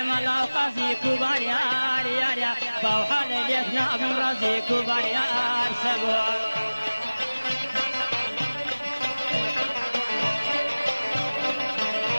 ملا قاسي كبار يا فوحل اليثنا بن رازي كبار يا سبو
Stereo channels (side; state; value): both; inverted; correlation -1.00